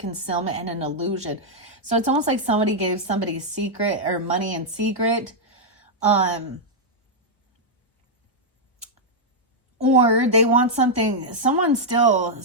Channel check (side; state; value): both; normal; correlation -0.04